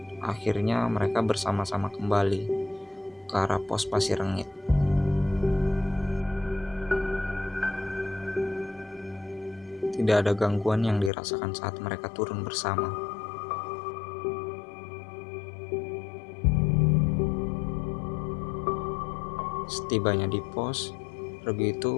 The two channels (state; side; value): drops out; right; at 11.1 s